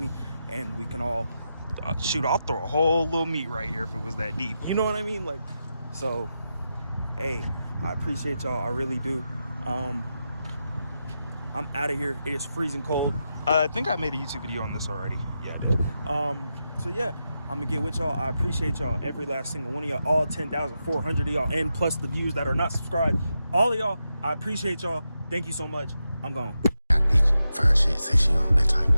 and we can all shoot. I'll throw a whole little meat right here if it was that deep. You know what I mean? Like, so, hey, I appreciate y'all. I really do. I'm out of here. It is freezing cold. I think I made a YouTube video on this already. Yeah, I did. So yeah, I'm gonna get with y'all. I appreciate y'all, every last single one of y'all, all 10,400 of y'all, and plus the views that are not subscribed. All of y'all, I appreciate y'all. Thank you so much. I'm gone. Fine shit, say she on that type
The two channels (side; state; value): both; inverted; correlation -0.88